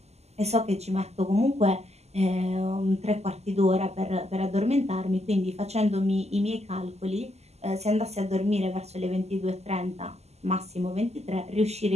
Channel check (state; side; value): late; left; 0.31 ms